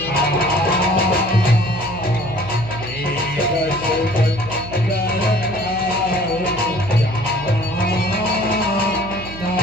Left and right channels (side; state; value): right; noise; hum, 13 dB below the sound